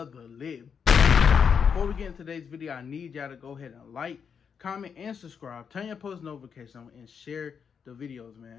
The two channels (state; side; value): quieter; right; 6.7 dB